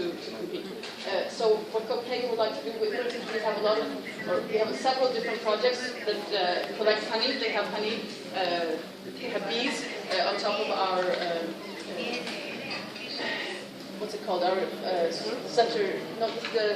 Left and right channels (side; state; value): both; identical; correlation 1.00